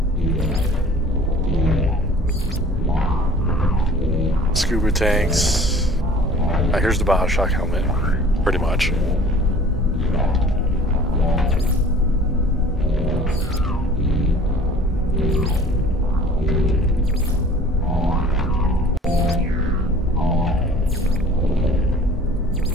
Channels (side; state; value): both; normal; correlation 0.48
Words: Scuba tanks. Here's the BioShock helmet, pretty much.